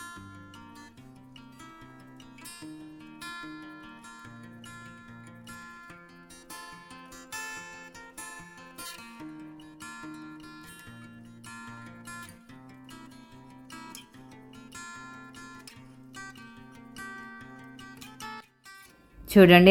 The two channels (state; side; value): identical; both; correlation 1.00